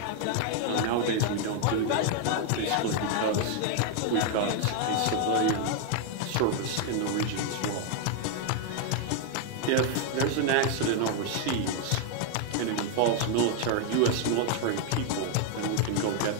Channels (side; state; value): both; different; correlation 0.00